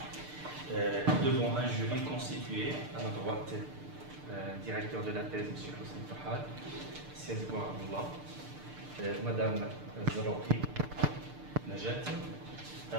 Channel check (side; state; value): left; late; 6.7 ms